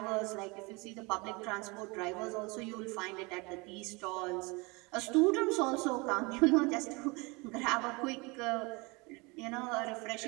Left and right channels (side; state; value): left; quieter; 26.8 dB